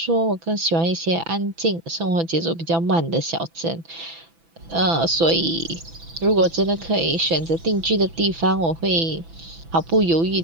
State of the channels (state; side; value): late; left; 6.0 ms